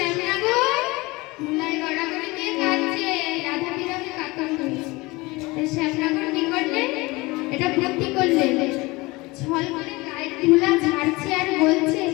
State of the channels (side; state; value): right; quieter; 22.9 dB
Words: ধুলায় গড়াগড়ি দিয়ে খাচ্ছে রাধা বিরহে পাথর হয়ে। তাই শ্যামনগর কি করলে এটা বুদ্ধি করলে ছল করে গায়ের ধুলা ঝাড়ছে আর বলছে